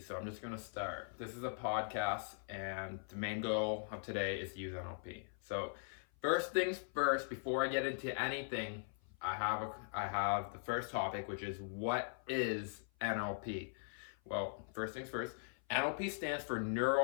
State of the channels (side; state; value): right; silent; 51 dB below the other